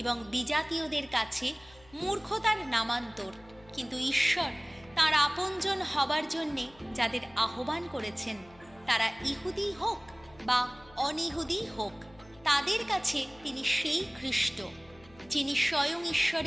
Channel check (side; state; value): left; noise; hum, 26 dB below the sound